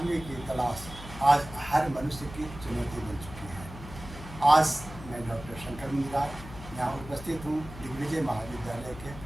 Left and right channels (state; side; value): noise; left; hum, 14 dB below the sound